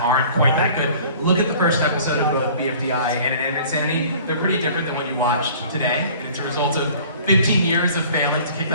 aren't quite that good. Look at the first episode of both BFDI and Inanimate Insanity. They're pretty different than what you watched today. And it's a result of 15 years of failing to kick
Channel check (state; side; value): inverted; both; correlation -0.49